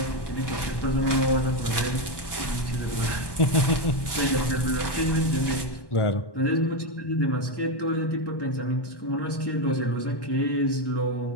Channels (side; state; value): right; late; 1.1 ms